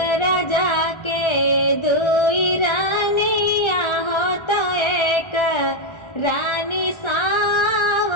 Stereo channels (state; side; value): late; right; 1.3 ms